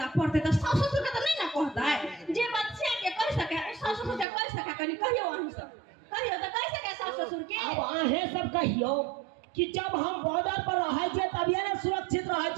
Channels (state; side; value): drops out; left; at 4.2 s